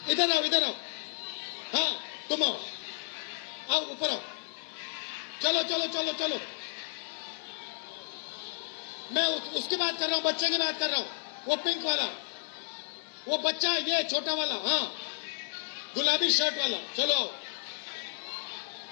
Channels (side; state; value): right; silent; digital silence